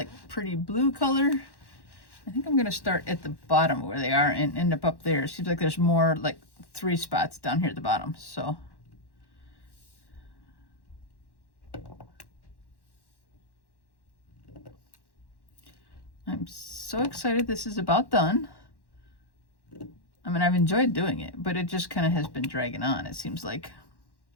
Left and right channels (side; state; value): right; late; 1.1 ms